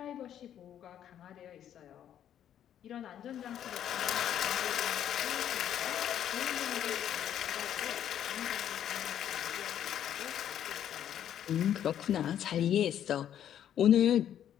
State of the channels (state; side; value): quieter; right; 10.2 dB